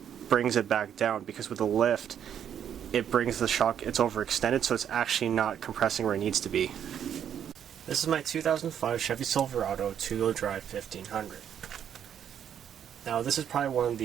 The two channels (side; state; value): left; quieter; 9.1 dB